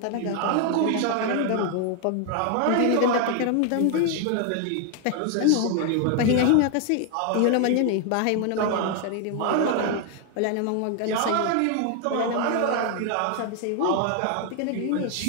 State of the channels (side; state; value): both; different; correlation 0.01